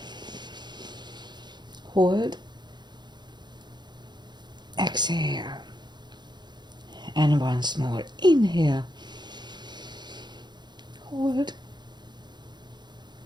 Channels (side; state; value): left; late; 0.21 ms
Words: Hold. Exhale. And once more. Inhale. Hold.